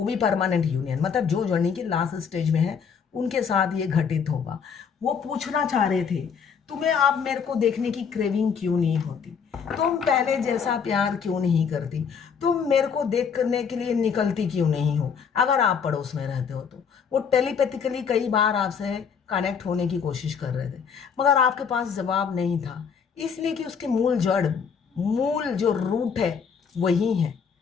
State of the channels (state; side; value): quieter; right; 6.6 dB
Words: भी परमानेंट यूनियन, मतलब जो जर्नी के लास्ट स्टेज में है, उनके साथ ये घटित होगा। वो पूछना चाह रहे थे, तुम्हें आप मेरे को देखने की क्रेविंग क्यों नहीं होती, तुम पहले जैसा प्यार क्यों नहीं करती, तुम मेरे को देख करने के लिए निकलती क्यों नहीं हो। अगर आप पड़ोस में रहते हो तो वो टेलीपैथिकली कई बार आपसे कनेक्ट होने की कोशिश कर रहे थे, मगर आपके पास जवाब नहीं था, इसलिए कि उसके मूल जो रूट है वही है।